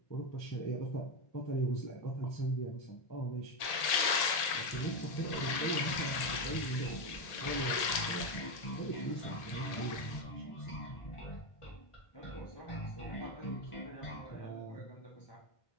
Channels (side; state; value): right; late; 1.8 ms